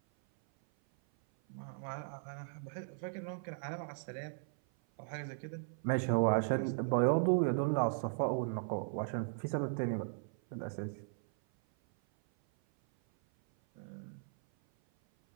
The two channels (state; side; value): silent; left; 53 dB below the other